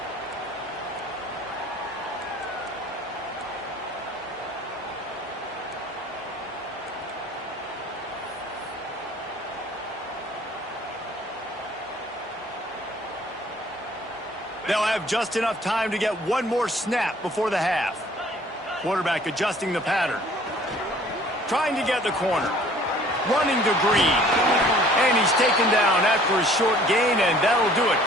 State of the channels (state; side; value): normal; both; correlation 0.54